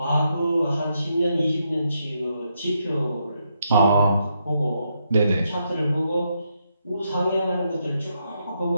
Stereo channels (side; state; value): both; inverted; correlation -0.80